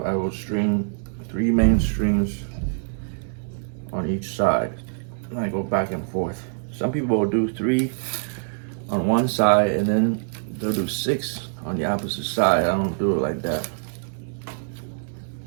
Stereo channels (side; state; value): left; silent; digital silence